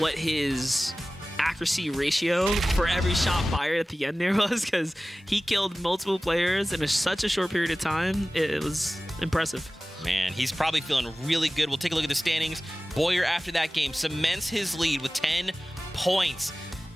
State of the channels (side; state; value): both; normal; correlation 0.97